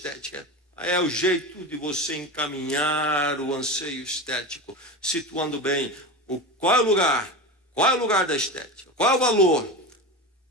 É o jeito de você encaminhar o anseio estético, situando bem qual é o lugar, da estética, qual é o valor,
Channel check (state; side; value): normal; both; correlation 0.25